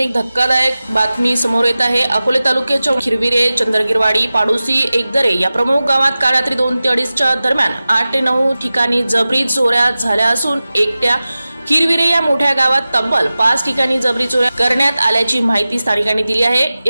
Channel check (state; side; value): inverted; both; correlation -0.96